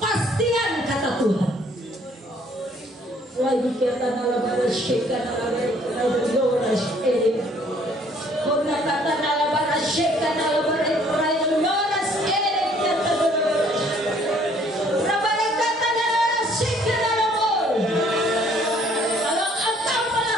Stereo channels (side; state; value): both; normal; correlation 0.61